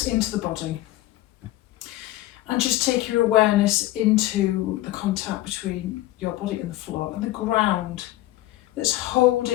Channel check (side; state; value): right; quieter; 16.2 dB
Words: into the body and just take your awareness into the contact between your body and the floor and the ground that's